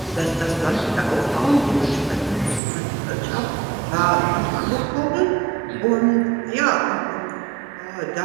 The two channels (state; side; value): drops out; left; at 2.6 s